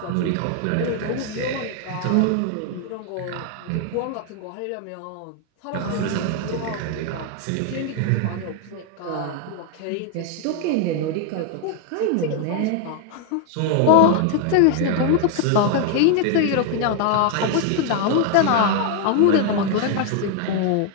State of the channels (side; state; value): both; different; correlation 0.00